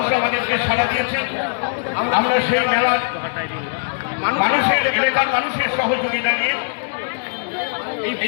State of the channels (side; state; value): right; silent; 58 dB below the other